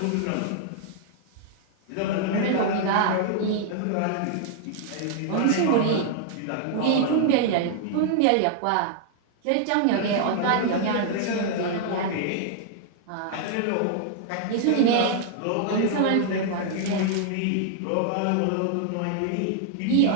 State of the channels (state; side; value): different; both; correlation -0.01